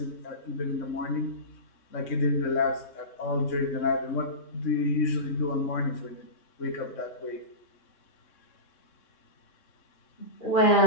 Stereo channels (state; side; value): late; right; 3.6 ms